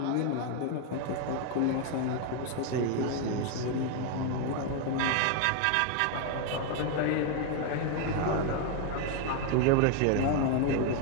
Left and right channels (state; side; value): different; both; correlation 0.01